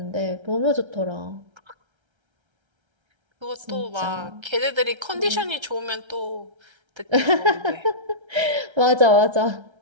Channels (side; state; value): left; late; 1.3 ms